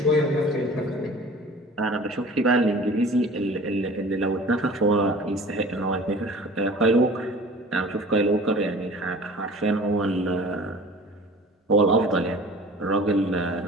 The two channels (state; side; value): normal; both; correlation 0.43